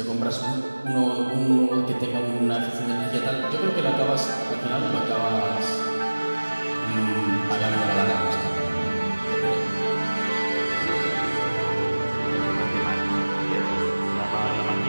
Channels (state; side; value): inverted; both; correlation -1.00